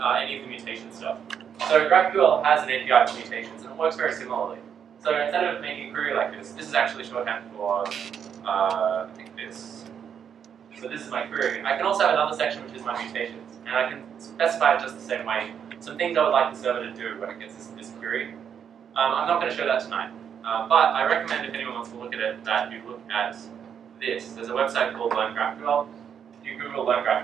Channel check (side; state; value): left; quieter; 8.0 dB